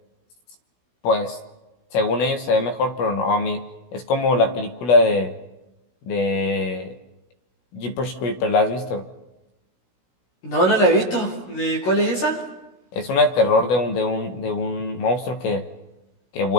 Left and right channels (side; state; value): right; late; 16 ms